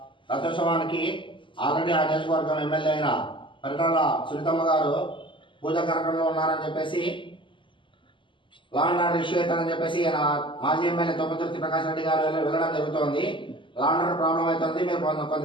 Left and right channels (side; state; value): right; late; 0.25 ms